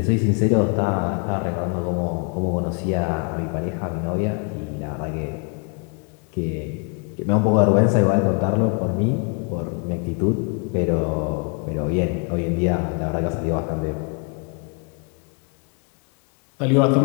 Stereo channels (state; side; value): quieter; right; 35.4 dB